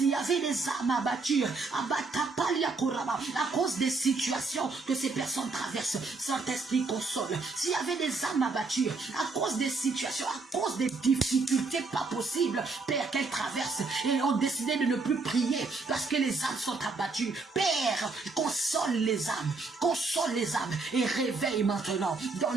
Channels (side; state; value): left; quieter; 3.9 dB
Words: y avait des âmes abattues, à cause des situations que ces personnes traversent, Saint-Esprit, console. S'il y avait des âmes abattues à cause des situations, à cause des difficultés pas possibles, Père, qu'elles traversent et ont décidé de ne plus prier parce que les âmes sont abattues, Père, console les âmes et réveille maintenant.